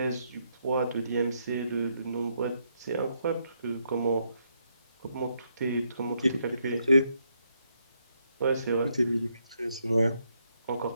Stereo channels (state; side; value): inverted; both; correlation -0.77